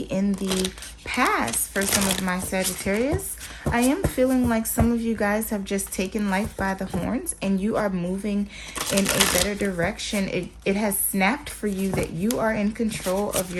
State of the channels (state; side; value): identical; both; correlation 1.00